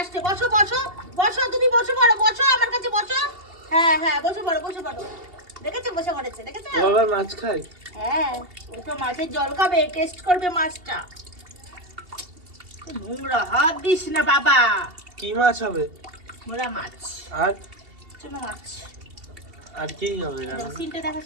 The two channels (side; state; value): left; late; 2.7 ms